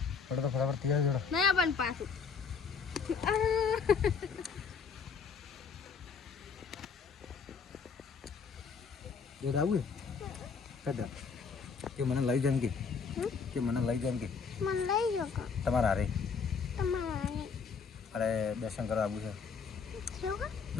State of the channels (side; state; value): right; quieter; 5.7 dB